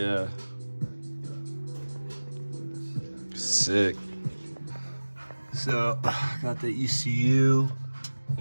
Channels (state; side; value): inverted; both; correlation -1.00